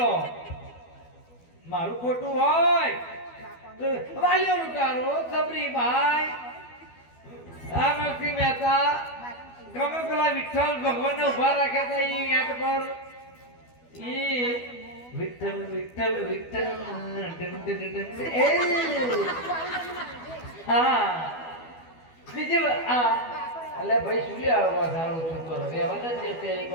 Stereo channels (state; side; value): late; right; 12 ms